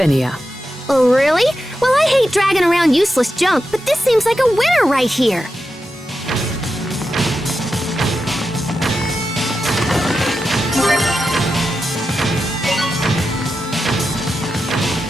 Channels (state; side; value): normal; both; correlation 0.89